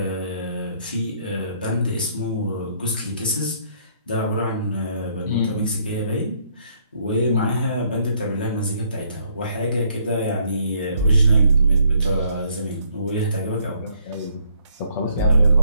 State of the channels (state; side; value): inverted; both; correlation -0.67